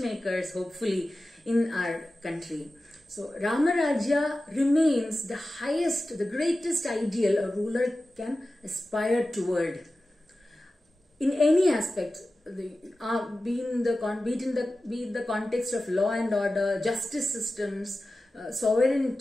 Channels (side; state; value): both; normal; correlation 0.94